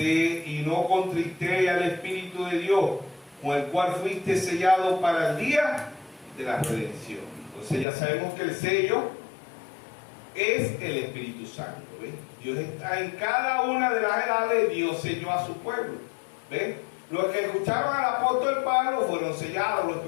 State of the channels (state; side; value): drops out; right; at 7.9 s